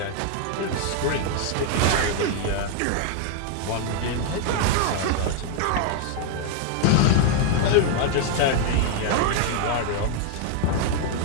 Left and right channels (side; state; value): both; different; correlation 0.00